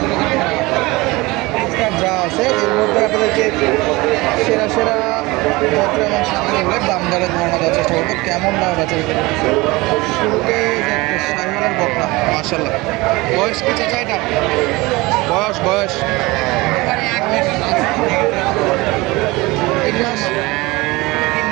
যা আছে এর মধ্যে আপনাদেরকে সেরা সেরা পত্র এবং সামগ্রীগুলোর দাম দরের ধারণা দেওয়ার চেষ্টা করবো। কেমন দাম আছে শুরুতে শাহিওয়ালের বকনা মাশাল্লাহ। বয়স কি চাচা এটা? বয়স বয়স 3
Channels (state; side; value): quieter; left; 22.2 dB